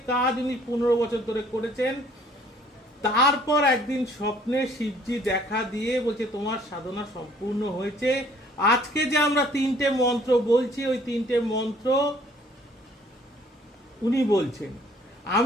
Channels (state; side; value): normal; both; correlation 0.59